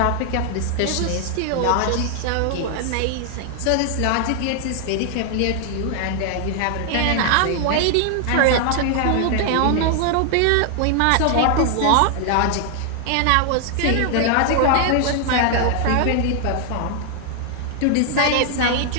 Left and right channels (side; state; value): both; different; correlation 0.00